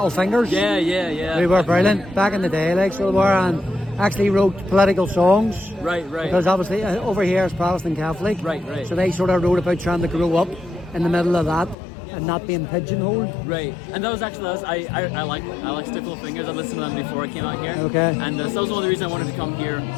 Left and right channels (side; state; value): right; drops out; at 11.8 s